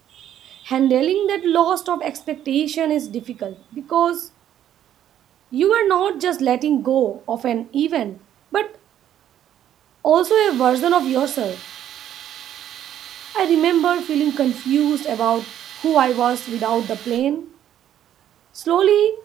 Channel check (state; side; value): quieter; left; 10.9 dB